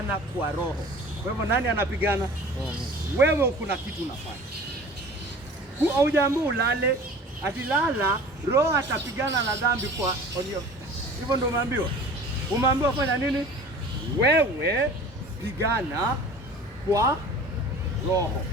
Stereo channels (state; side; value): normal; both; correlation 0.42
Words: kwa Roho. Kwa hivyo nani anapigana? Wewe kuna kitu unafanya. Haujaambiwa ulale, atilala Roho atapigana na dhambi kwa onyo. Hivyo ndio umeambiwa. Umeambiwa fanya nini? Wewe pigana kwa Roho.